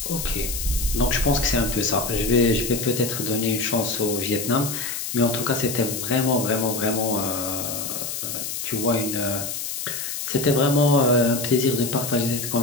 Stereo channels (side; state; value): left; noise; hiss, 5 dB below the sound